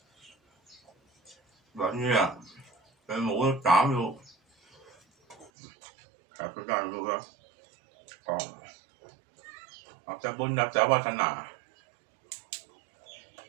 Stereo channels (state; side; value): drops out; left; at 5.5 s